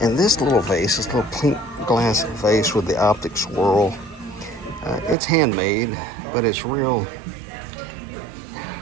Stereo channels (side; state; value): left; drops out; at 5.2 s